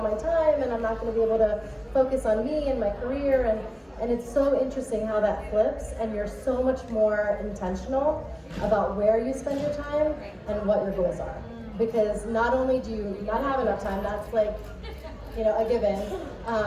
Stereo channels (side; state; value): both; identical; correlation 1.00